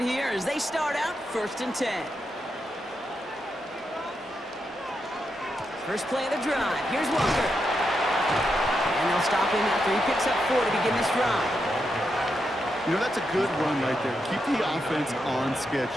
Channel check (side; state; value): both; normal; correlation 0.84